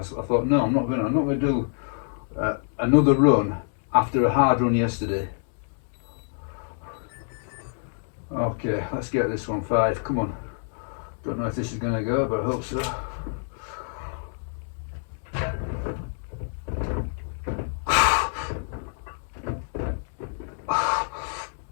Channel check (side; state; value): right; silent; digital silence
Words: thought, no, I'm not going to do another run after a hard run yesterday. Okay, let's get this one 5. Come on. Don't know if this is going to go, but I hope so.